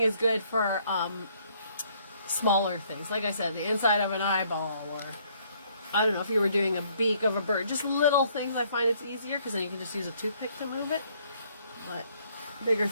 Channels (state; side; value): inverted; both; correlation -0.65